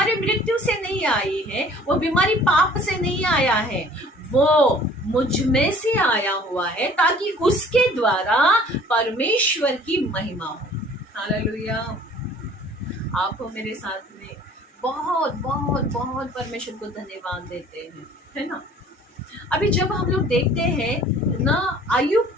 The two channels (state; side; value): normal; both; correlation 0.51